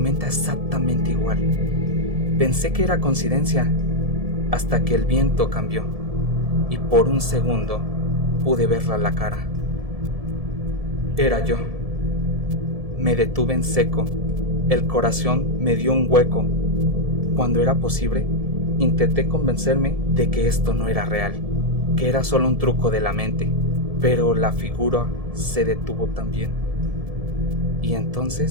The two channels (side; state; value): left; late; 1.7 ms